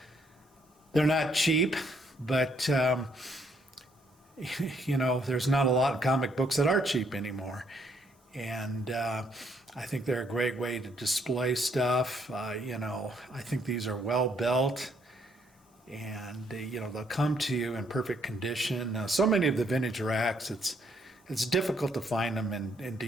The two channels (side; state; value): both; normal; correlation 0.70